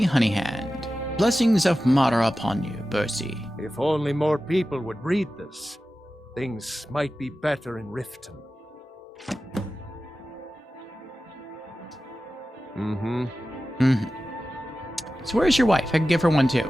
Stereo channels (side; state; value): both; normal; correlation 0.94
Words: Honeyhand. Blessings of Mara upon you, Bursey. If only more people would read this, things might be better in Riften. So where's your wife? I can give her one too.